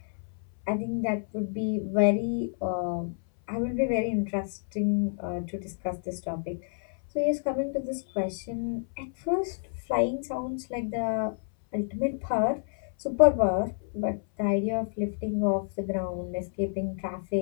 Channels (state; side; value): silent; right; 59 dB below the other